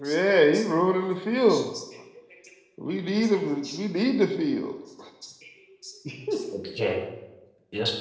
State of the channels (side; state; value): both; identical; correlation 1.00